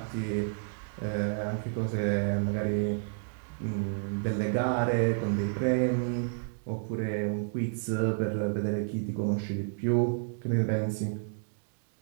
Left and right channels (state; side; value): silent; left; digital silence